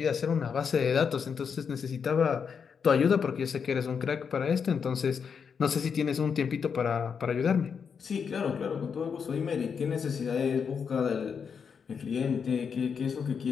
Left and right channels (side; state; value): right; quieter; 6.5 dB